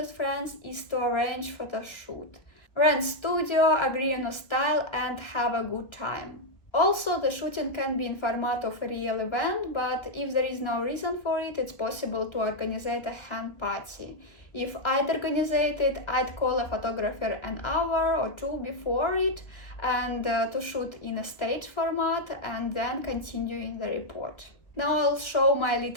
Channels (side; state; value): right; late; 1.1 ms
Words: friends is to arrange photo shoot. Rent studio, agree on a style and have a good time. Also, the shooting can be in format of a real event, but if there is no reason for it, it's possible to organize a hen party. If I'd organize it, I'd call a photographer an hour or two before it and to shoot in a stage format and then continue in the report. Now I'll show my